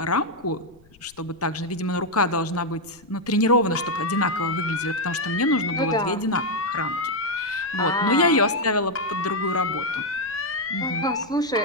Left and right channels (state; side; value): noise; left; rumble, 30 dB below the sound